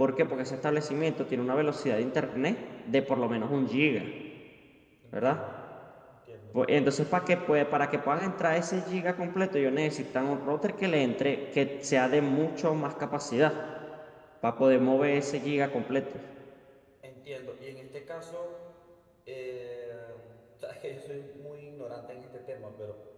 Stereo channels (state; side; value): identical; both; correlation 1.00